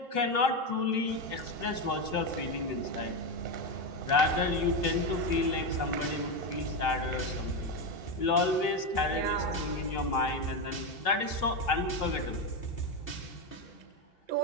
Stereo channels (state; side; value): late; right; 2.7 ms